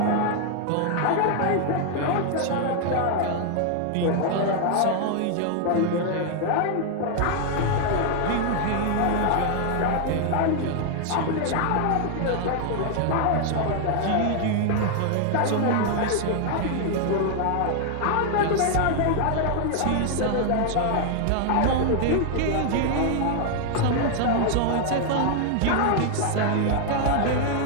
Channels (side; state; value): both; different; correlation 0.00